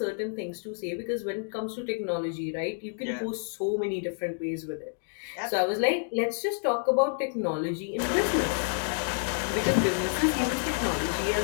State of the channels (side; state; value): right; silent; 58 dB below the other